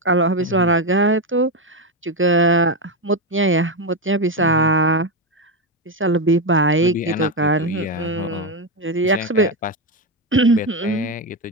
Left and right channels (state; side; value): normal; both; correlation 0.09